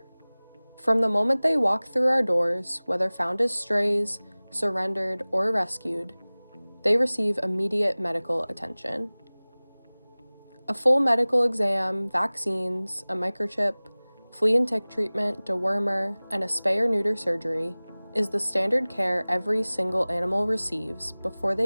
From the moment they walk through our doors, whether found as strays, surrendered, or rescued, they receive immediate medical attention. A full medical exam, vaccines, a microchip, flea and tick treatment, dewormer, and a spay or neuter surgery is the standard care every single animal receives before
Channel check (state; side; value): inverted; both; correlation -1.00